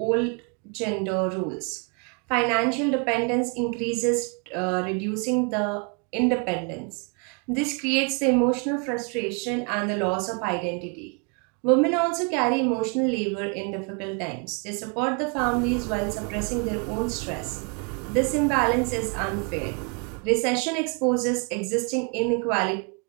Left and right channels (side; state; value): left; quieter; 34.6 dB